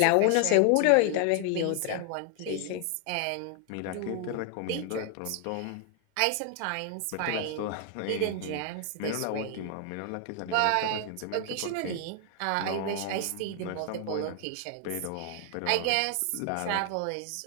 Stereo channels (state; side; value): different; both; correlation 0.00